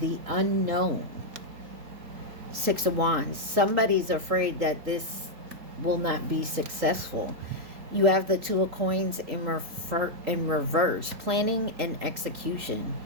the unknown. Six of Wands. Somebody's afraid that this will not be successful. You have the Two of Coins in reverse. Planning and execution.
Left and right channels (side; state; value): left; late; 3.8 ms